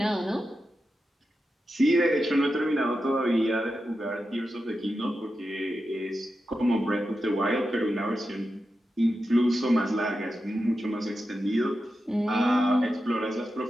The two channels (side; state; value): both; normal; correlation 0.90